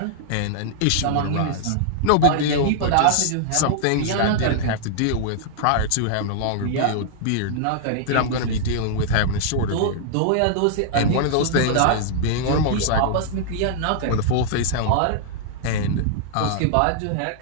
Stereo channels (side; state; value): both; different; correlation -0.01